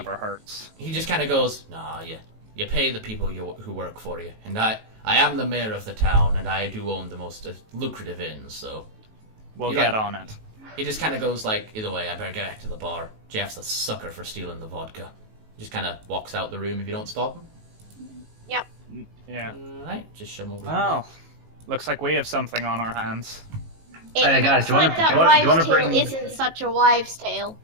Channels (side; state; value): left; late; 18 ms